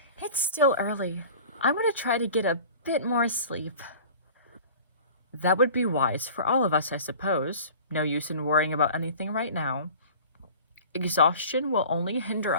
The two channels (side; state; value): both; inverted; correlation -0.43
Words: It's still early. I'm going to try to get a bit more sleep. That would be wise for all of us, I suppose. No use in worrying about anything right now. Exhaustion will only hinder